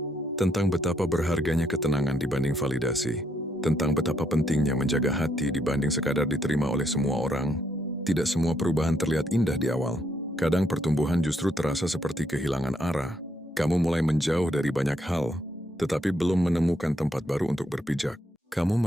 tentang betapa berharganya ketenangan dibanding validasi, tentang betapa pentingnya menjaga hati dibanding sekadar diterima oleh semua orang. Tidak semua perubahan terlihat indah di awal. Kadang pertumbuhan justru terasa seperti kehilangan arah. Kamu mulai menjauh dari banyak hal, tetapi belum menemukan tempat baru untuk berpijak. Kamu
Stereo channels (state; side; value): normal; both; correlation 0.74